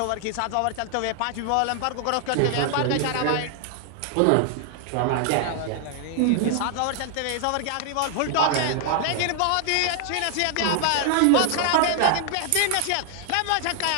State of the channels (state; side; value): different; both; correlation 0.00